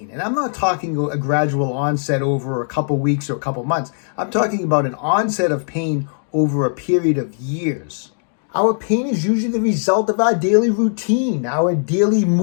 And I'm not talking a gradual onset over a couple weeks or a couple months. I'm talking about an onset of pain over a period of years. Our pain is usually the result of our daily routine, our daily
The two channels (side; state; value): right; silent; digital silence